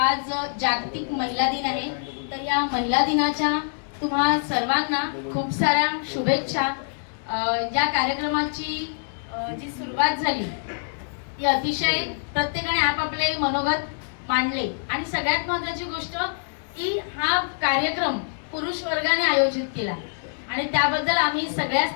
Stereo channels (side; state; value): right; silent; 62 dB below the other